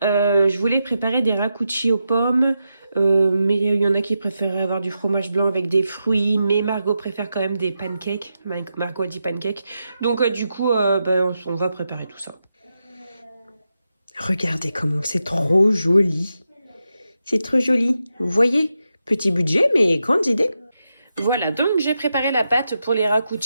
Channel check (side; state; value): both; inverted; correlation -0.87